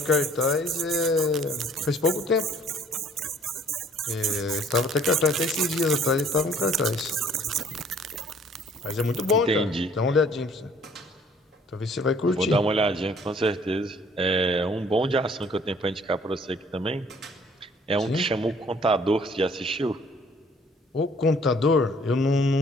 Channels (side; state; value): both; normal; correlation 0.57